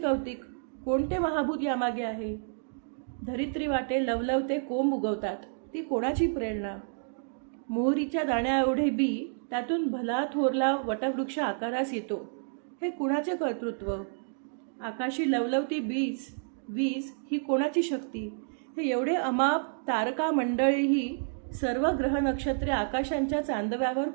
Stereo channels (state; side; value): silent; left; digital silence